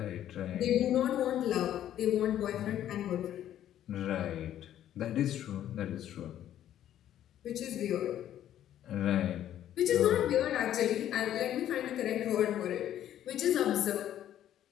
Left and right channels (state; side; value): quieter; right; 11.5 dB